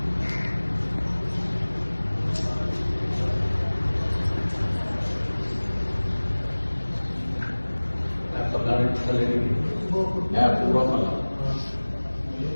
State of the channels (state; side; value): inverted; both; correlation -1.00